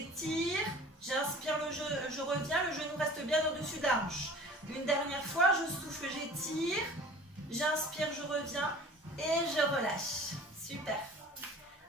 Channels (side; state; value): both; normal; correlation 0.44